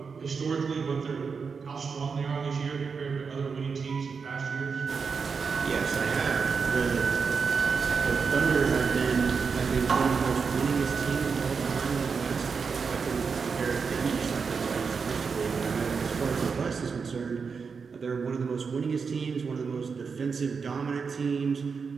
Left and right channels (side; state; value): left; quieter; 5.5 dB